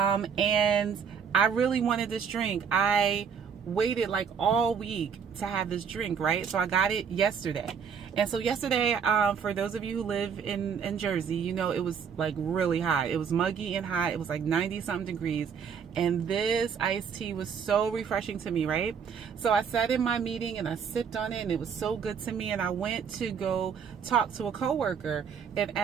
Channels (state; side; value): quieter; left; 6.9 dB